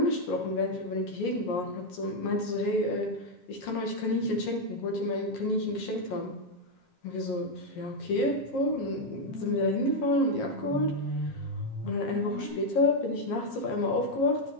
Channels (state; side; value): late; right; 7.4 ms